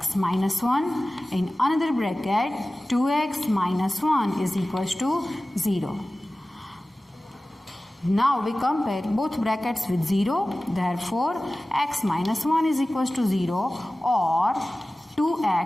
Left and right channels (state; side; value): normal; both; correlation 0.97